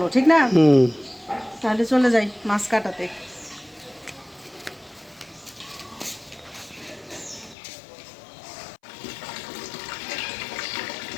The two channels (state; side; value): drops out; right; at 7.6 s